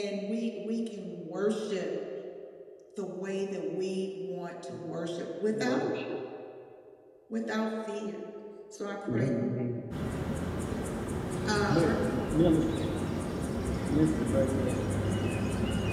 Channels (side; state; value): both; identical; correlation 1.00